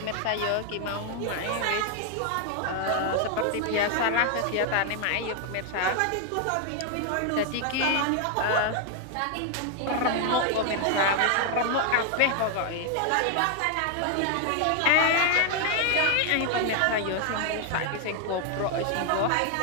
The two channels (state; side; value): different; both; correlation 0.00